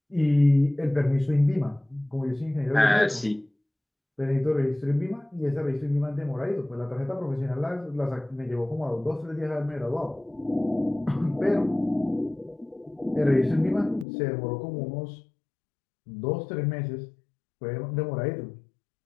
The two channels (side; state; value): right; drops out; at 14.1 s